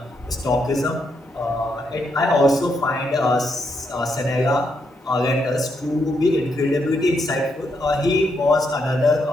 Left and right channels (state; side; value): normal; both; correlation 0.78